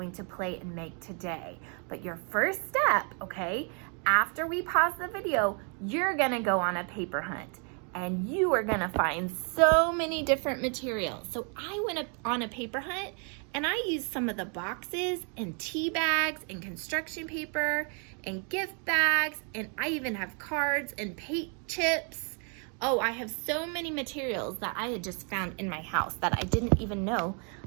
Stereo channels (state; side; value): quieter; left; 39.5 dB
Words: to play and make today. But your first step, okay, after we pause the video, you're gonna go on a paper hunt. And you are gonna find so many different materials. So I went on a paper hunt and I used some of the boxes and tea bags and construction paper and gift bags, and I even have cards and paint chips. Oh, I have so many materials that I had just found in my house that I didn't even know